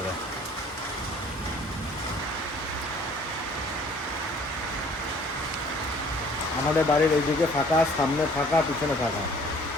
আমাদের বাড়ির এইদিকে ফাঁকা, সামনে ফাঁকা, পিছনে ফাঁকা,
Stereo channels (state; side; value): normal; both; correlation 0.54